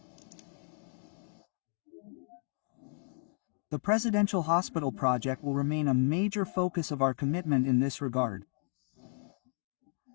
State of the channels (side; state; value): right; silent; digital silence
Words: The Presidential Hospital project will remain a major focus of our commitment in this regard.